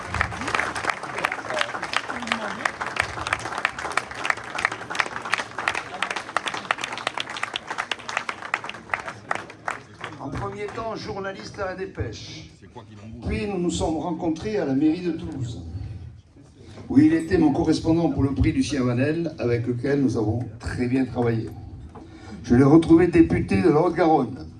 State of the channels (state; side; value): identical; both; correlation 1.00